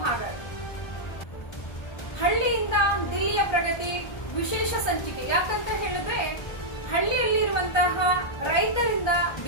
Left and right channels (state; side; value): late; right; 1.3 ms